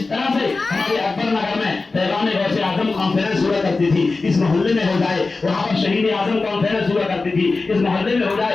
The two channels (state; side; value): quieter; right; 3.8 dB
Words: طرح سے ہمارے اکبر نگر میں پیغام غوث اعظم کانفرنس ہوا کرتی تھی، اس محلے میں ہو جائے، وہاں پر شہید اعظم کانفرنس ہوا کرتی تھی، اس محلے میں ہو